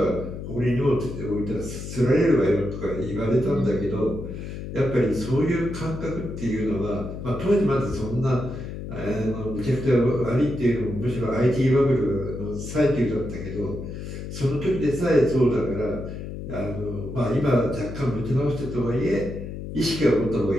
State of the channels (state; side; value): noise; left; hum, 8 dB below the sound